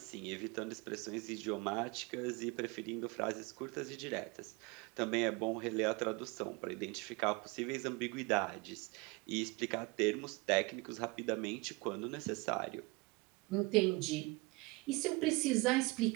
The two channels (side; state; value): left; quieter; 26.0 dB